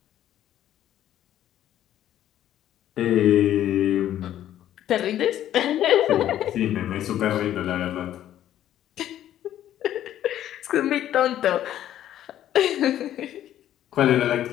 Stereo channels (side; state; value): right; quieter; 11.8 dB